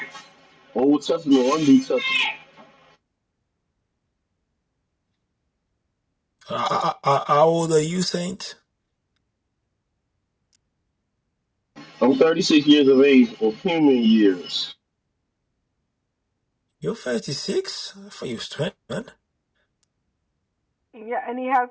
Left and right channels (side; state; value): both; identical; correlation 1.00